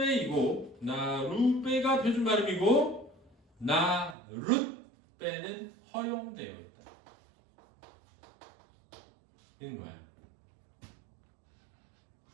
나룻배가 표준 발음이고 나룻배는 허용되어 있다. 이런 거야.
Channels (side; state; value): left; drops out; at 4.2 s